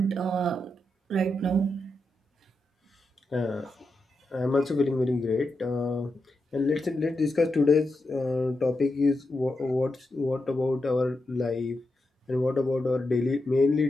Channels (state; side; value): normal; both; correlation 0.87